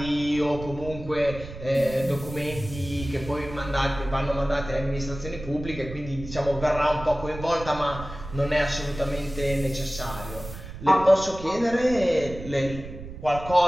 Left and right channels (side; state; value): right; noise; rumble, 12 dB below the sound